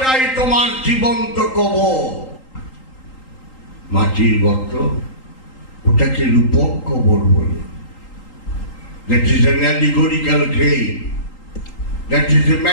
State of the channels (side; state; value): right; late; 3.8 ms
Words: তোমার জীবন্ত কবর। মাটির গর্ত, ওটাকে রূপক কবর বলে। That is an allegorical grave, that is a